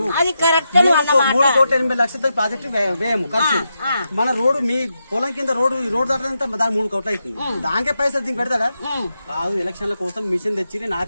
3,80,00,000 ప్రాజెక్టు వ్యయము ఖర్చు మన రోడ్డు మీ పొలం కింద రోడ్డు ఈ రోడ్డు దాటంతా దాని 3 కోట్లు అవుతుంది దానికే పైసలు దీనికి పెడతాడా కాదు ఎలక్షన్ల కోసం మిషన్ తెచ్చి నేను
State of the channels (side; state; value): both; inverted; correlation -0.86